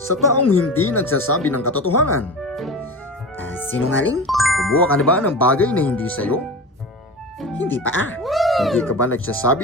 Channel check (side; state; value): both; normal; correlation 0.29